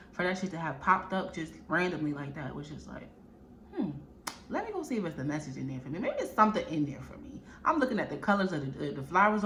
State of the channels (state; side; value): identical; both; correlation 1.00